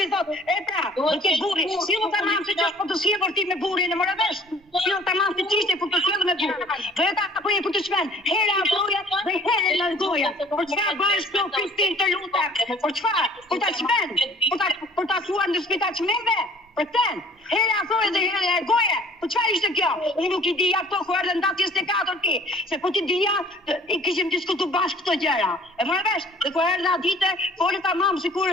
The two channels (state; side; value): normal; both; correlation 0.53